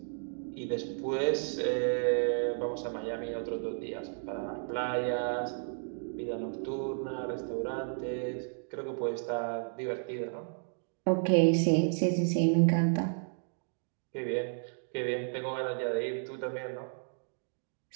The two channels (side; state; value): left; silent; 56 dB below the other